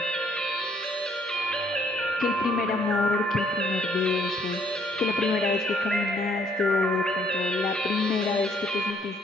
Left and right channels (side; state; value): both; normal; correlation 0.65